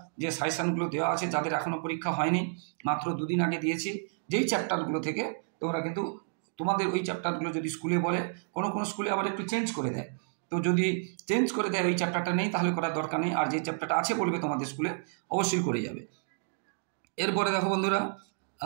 যে সাজেশনগুলো দেওয়া আছে, যাদের এখনও পরীক্ষা হয়নি, মাত্র 2 দিন আগে দিয়েছি, যেই চ্যাপ্টারগুলো থেকে তোমরা কিন্তু তোমাদের ওই চ্যাপ্টারগুলো যদি স্কুলে বলে, কোনো স্কুলে আবার একটু চেঞ্জ করে দেয়, তো যদি চেঞ্জ করে দেয় ওই চ্যাপ্টারটা নেই, তাহলে করার দরকার নেই। আর যে চ্যাপ্টারটা আছে বলবে তোমাদের স্কুলে, অবশ্যই করে যাবে। এরপরে দেখো বন্ধুরা,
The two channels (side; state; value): left; silent; digital silence